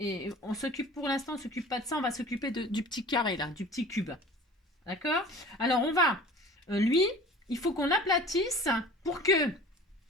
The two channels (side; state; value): both; normal; correlation 0.43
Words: on s'occupe, pour l'instant, on s'occupe pas de ça, on va s'occuper du petit carré là, du petit cube. D'accord? Alors on va, lui, il faut qu'on l'aplatisse pour que,